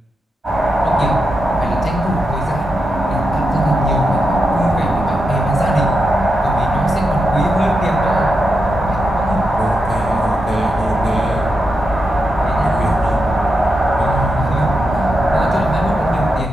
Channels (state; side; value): normal; both; correlation 0.86